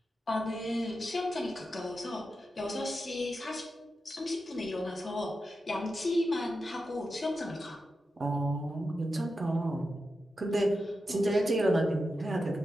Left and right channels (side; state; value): both; normal; correlation 0.89